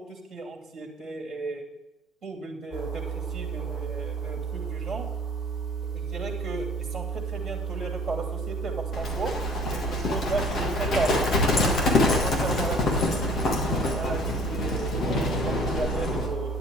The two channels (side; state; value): both; normal; correlation 0.50